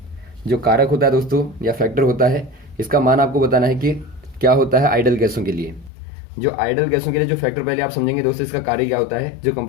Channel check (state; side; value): drops out; right; at 5.9 s